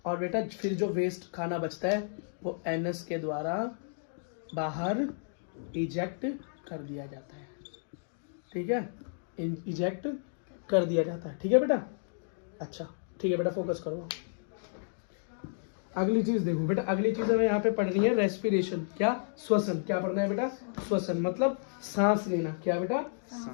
और बेटा फिर जो वेस्ट खाना बचता है वो एनस के द्वारा बाहर इजेक्ट कर दिया जाता है। ठीक है, इजेक्ट कर दिया जाता है। ठीक है बेटा, अच्छा ठीक है बेटा, फोकस करो। अगली चीज देखो बेटा, अगली चीज हमें यहाँ पे पढ़नी है रेस्पिरेशन। क्या? श्वसन। क्या पढ़ना है बेटा? श्वसन मतलब सांस लेना। क्या बेटा?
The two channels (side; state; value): right; silent; digital silence